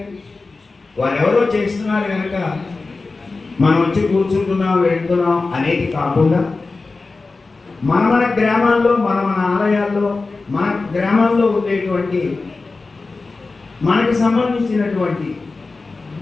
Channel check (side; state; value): right; quieter; 3.8 dB